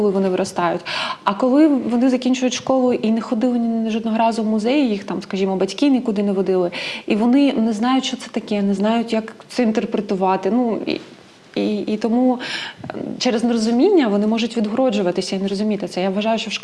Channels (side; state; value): both; identical; correlation 1.00